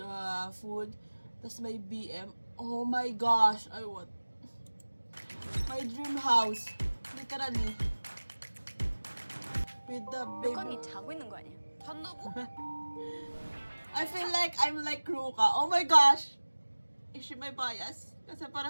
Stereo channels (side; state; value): both; inverted; correlation -1.00